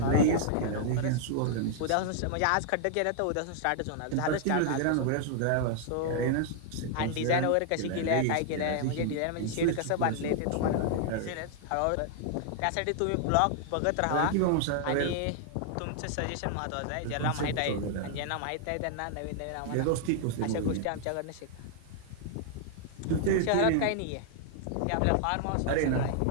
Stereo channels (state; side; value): different; both; correlation -0.01